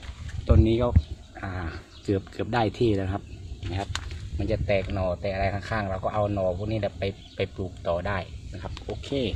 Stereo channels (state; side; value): identical; both; correlation 1.00